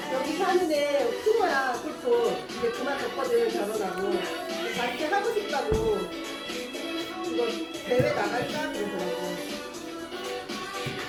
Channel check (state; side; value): identical; both; correlation 1.00